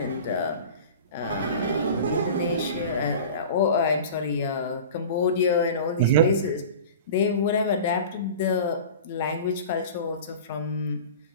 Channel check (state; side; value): inverted; both; correlation -0.36